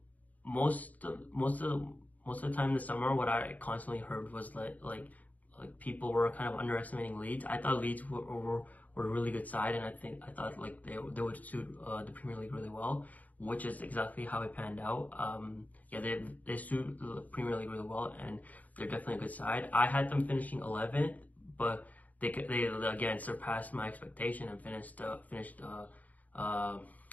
most of the time this summer, what I constantly heard was like people were kind of underestimating Leeds. I thought Leeds were a really good side, and I thought like they would suit the Premier League really well, which is exactly how it panned out. Yeah, they suit the Premier League really well, and they're definitely a good side. I had them finishing 11th, but they again surpassed my expectation and finished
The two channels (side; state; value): right; late; 0.077 ms